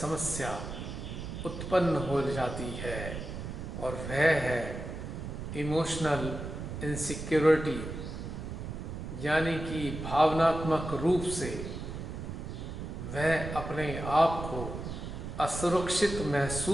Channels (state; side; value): noise; right; rumble, 7 dB below the sound